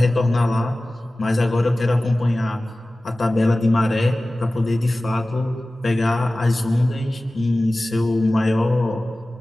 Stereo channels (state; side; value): normal; both; correlation 0.97